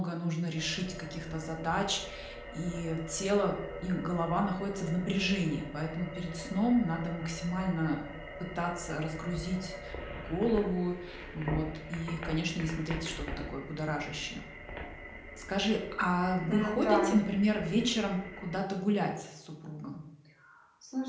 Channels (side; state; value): both; identical; correlation 1.00